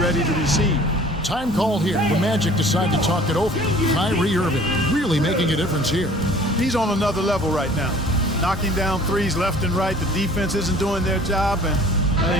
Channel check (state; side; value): normal; both; correlation 0.50